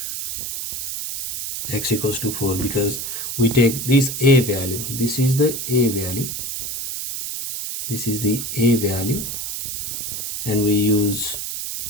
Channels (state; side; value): noise; right; hiss, 5 dB below the sound